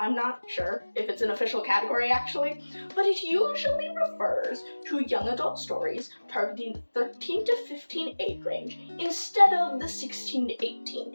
not sure if it's an official category actually, but it usually refers to young adult stories targeting the 13 to 15 age range instead of the 16 to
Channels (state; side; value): inverted; both; correlation -1.00